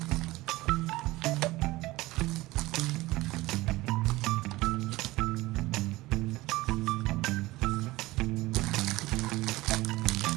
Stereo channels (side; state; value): left; quieter; 19.3 dB